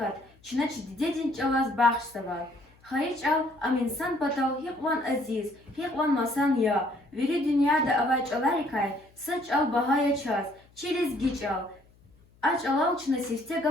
çınaç didedin çalaz bağışsava. Hayıç al, am insan batal, hikvan aziz, hikvan masan ya. Veri dünyada avaç alarikay, saç al bahaya çaz, çiliz giç al. Aç alal çına sifte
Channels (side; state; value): left; noise; hum, 30 dB below the sound